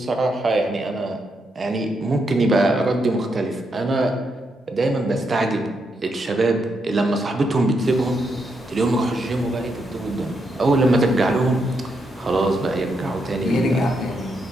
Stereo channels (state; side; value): normal; both; correlation 0.81